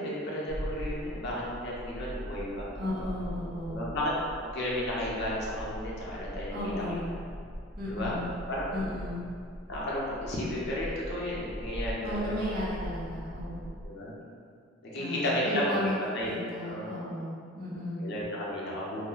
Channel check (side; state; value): both; normal; correlation 0.41